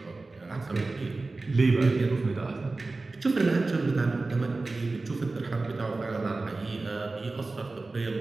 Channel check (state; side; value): quieter; left; 3.4 dB